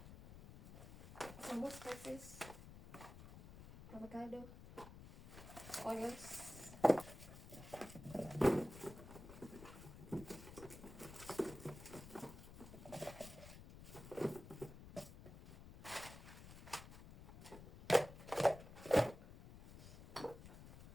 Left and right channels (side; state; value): left; noise; rumble, 14 dB below the sound